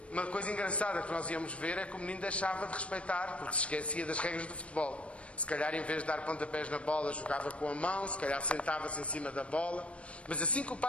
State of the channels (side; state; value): right; late; 0.062 ms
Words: uma coisa engraçada que nós íamos ver é que o menino deixava de respeitar, porque se esquecia das regras do futebol. Se calhar, em vez de dar pontapés na bola, jogava com a mão, se calhar sentava-se em cima da bola. Mas assim que o